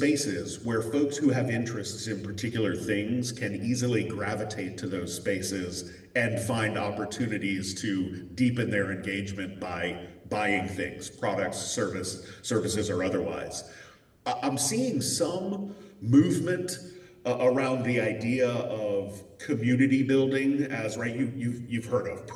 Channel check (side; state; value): both; identical; correlation 1.00